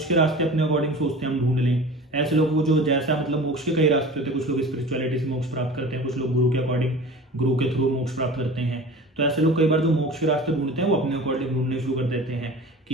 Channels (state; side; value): normal; both; correlation 0.38